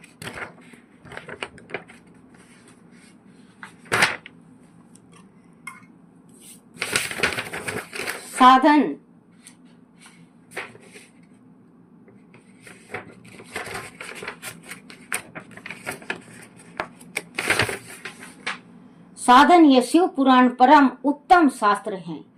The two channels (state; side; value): identical; both; correlation 1.00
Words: साधन यह शिव पुराण परम उत्तम शास्त्र है।